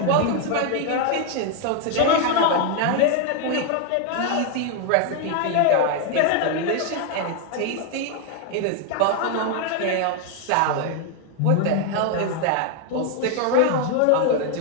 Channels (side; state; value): both; different; correlation 0.00